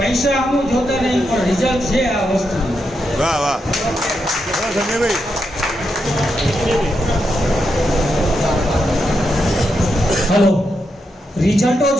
અમુક જોતા નહીં, પણ રિઝલ્ટ છે આ વસ્તુનું. વાહ વાહ. સંજયભાઈ. હલો, રિઝલ્ટો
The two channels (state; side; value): normal; both; correlation 0.84